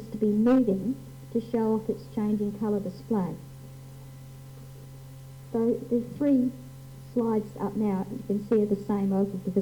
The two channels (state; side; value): identical; both; correlation 1.00